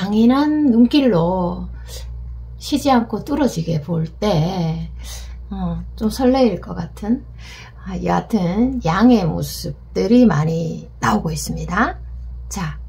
눈길로 쉬지 않고 뚫어지게 볼 때 좀 설레일 것 같은, 여하튼 양의 모습들이 많이 나오고 있습니다. 자,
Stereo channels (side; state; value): both; identical; correlation 1.00